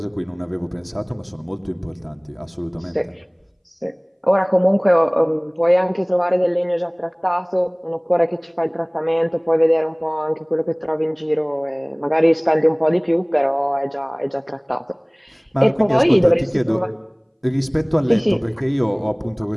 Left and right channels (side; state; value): both; identical; correlation 1.00